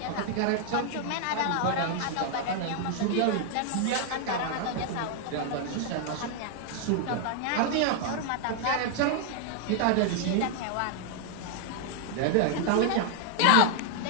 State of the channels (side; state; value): both; different; correlation 0.00